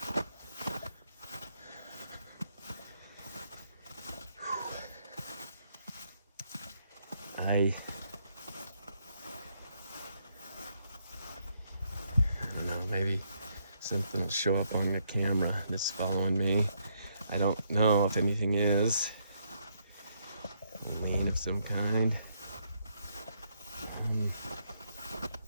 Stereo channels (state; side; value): inverted; both; correlation -0.74